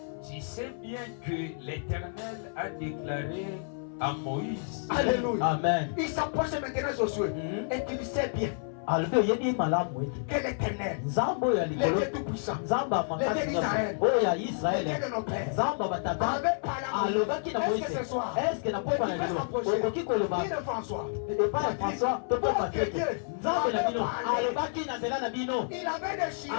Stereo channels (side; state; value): right; silent; 58 dB below the other